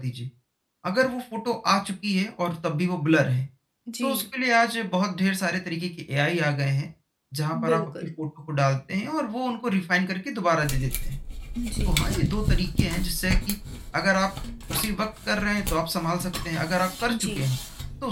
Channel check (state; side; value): identical; both; correlation 1.00